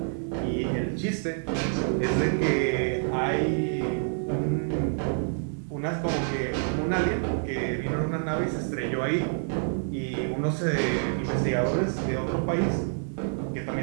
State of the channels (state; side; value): silent; left; 56 dB below the other